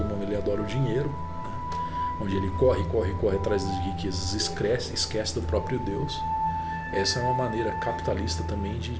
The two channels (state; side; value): identical; both; correlation 1.00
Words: ele adora o dinheiro, né? Onde ele corre atrás das riquezas, esquece do próprio Deus. Essa é uma maneira capitalista também